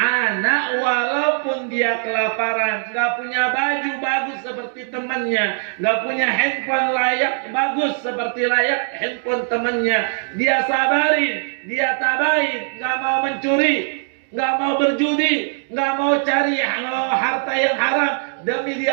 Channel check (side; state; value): left; silent; 61 dB below the other